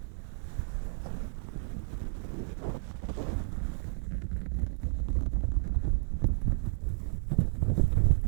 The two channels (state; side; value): silent; left; 57 dB below the other